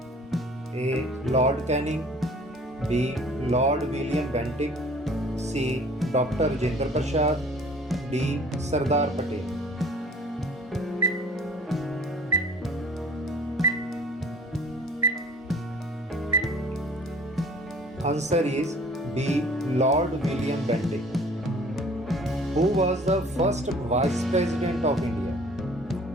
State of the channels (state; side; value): normal; both; correlation 0.50